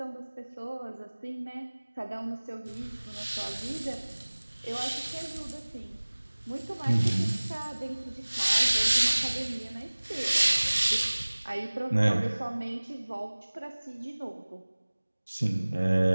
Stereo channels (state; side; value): inverted; both; correlation -1.00